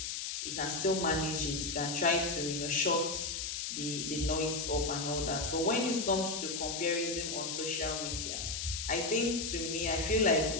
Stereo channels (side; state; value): left; noise; hiss, 3 dB below the sound